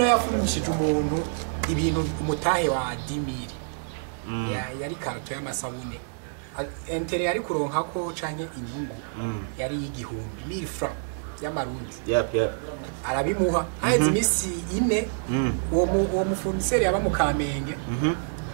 yafungishije umuntu ibintu umutahe wa 10000 yari karto y'amasabune entere yari kuronka ko canke inyungu yari y'igihumbi 1000 francs y'amarundi. Arabimuha haize imisi 4 uwo mufournisseur yaba mu Kamenge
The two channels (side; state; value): left; silent; digital silence